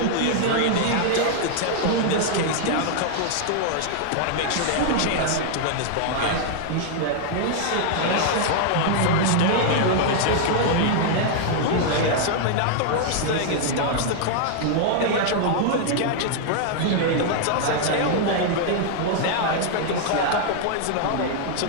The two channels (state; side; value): different; both; correlation 0.00